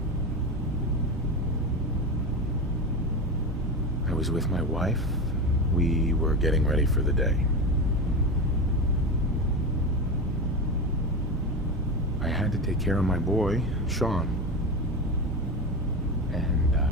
I was with my wife. We were getting ready for the day. I had to take care of my boy, Sean. And,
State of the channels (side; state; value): both; normal; correlation 0.21